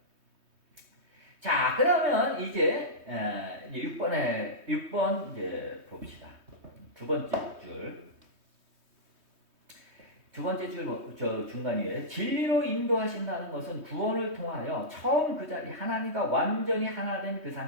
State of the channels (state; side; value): late; left; 3.2 ms